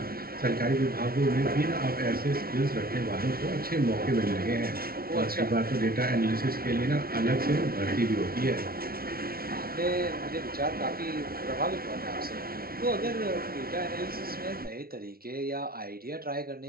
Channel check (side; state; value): left; late; 0.44 ms